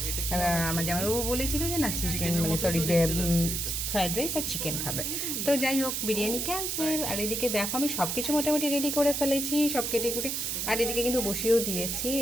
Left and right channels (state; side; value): noise; right; hiss, 1 dB below the sound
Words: আমার জামাইবাবু বলেছিল যে না চিকেন মানে সরি ফ্রাইড রাইস আর চিকেন খাবে। তো যাই হোক, বিরিয়ানি ক্যান্সেল। আর এদিকে দেখো, আমি সব কিছু মোটামুটি রেডি করে ফেলেছি, সব কেটে কুটে। আর এদিকে কিন্তু বসিয়েও দিয়েছি,